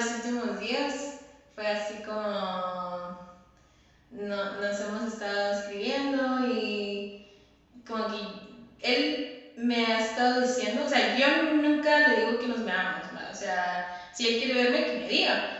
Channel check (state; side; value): identical; both; correlation 1.00